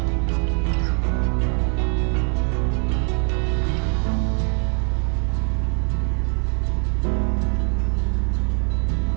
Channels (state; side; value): quieter; left; 37.1 dB